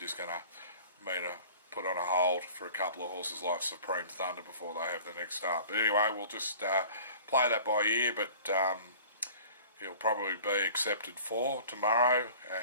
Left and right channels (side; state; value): both; inverted; correlation -0.45